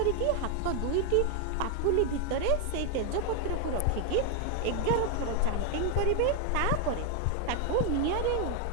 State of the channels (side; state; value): both; different; correlation 0.00